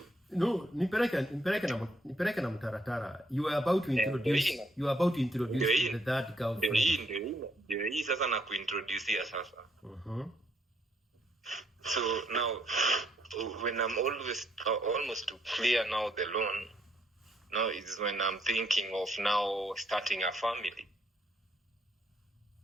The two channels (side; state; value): both; normal; correlation 0.72